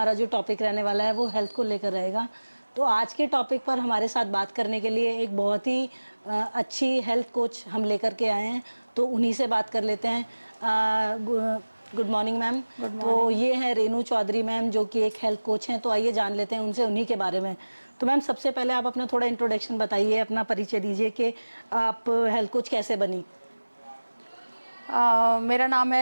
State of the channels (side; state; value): both; inverted; correlation -1.00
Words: जो टॉपिक रहने वाला है वो हेल्थ को लेकर रहेगा। तो आज के टॉपिक पर हमारे साथ बात करने के लिए एक बहुत ही अच्छी हेल्थ कोच हम लेकर के आए हैं, तो उन्हीं से बात कर लेते हैं। Good morning ma'am. तो ये हैं रेनू चौधरी मैम, जो कि एक हेल्थ कोच हैं। तो आइए जान लेते हैं उनसे उन्हीं के बारे में। तो मैम, सबसे पहले आप अपना थोड़ा इंट्रोडक्शन बताइए, अपना परिचय दीजिए कि आप हेल्थ कोच कैसे बनी। मेरा नाम